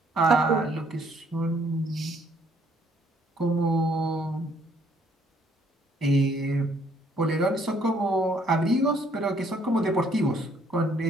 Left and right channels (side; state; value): both; normal; correlation 0.65